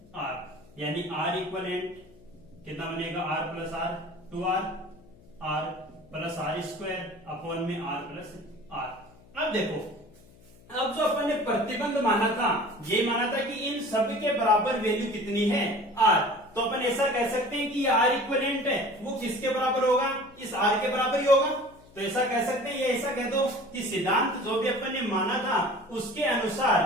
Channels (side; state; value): left; noise; hum, 25 dB below the sound